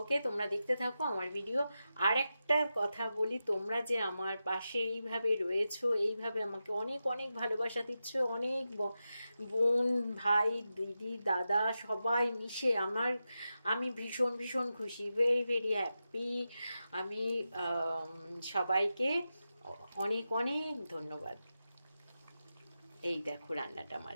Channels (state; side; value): inverted; both; correlation -0.91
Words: তোমরা দেখতে থাকো আমার ভিডিও। আর একটা কথা বলি, তোমরা যে আমার পাশে এইভাবে রয়েছো, এইভাবে আমাকে অনেক অনেক ভালোবাসা দিচ্ছ, অনেক বোন ভাই দিদি দাদা সবাই মিশে আমি ভীষণ ভীষণ খুশি, ভেরি ভেরি হ্যাপি। আমি সবাইকে অনেক অনেক ধন্যবাদ। এই দেখো রান্নাটা